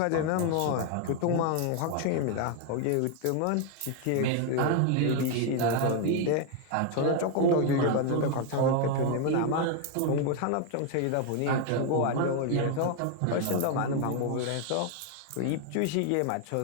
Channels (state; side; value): different; both; correlation 0.01